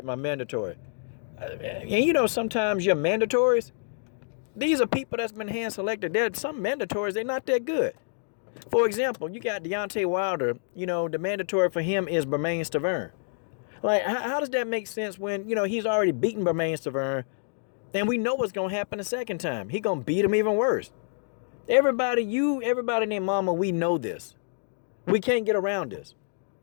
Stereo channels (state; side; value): silent; right; digital silence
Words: my mandatory. And sometimes your mandatories, These are people that's been hand selected. There's some mandatories, they're not that good. For example, you got Deontay Wilder, you know, the mandatory for him is Bermane Stiverne. Like, how does that make sense when, you know, he's already beaten Bermane Stiverne, and we know what's going to happen the second time. He going to beat him even worse. Everybody and their mama, we know this. We can't get around this.